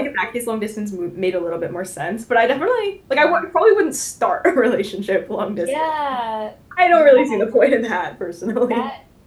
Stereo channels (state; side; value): identical; both; correlation 1.00